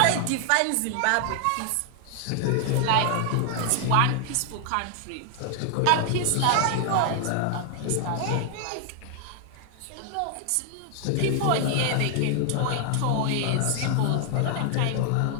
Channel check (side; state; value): both; different; correlation 0.00